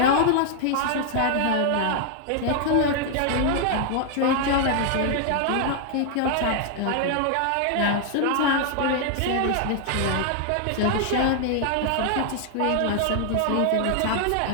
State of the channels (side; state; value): both; different; correlation 0.00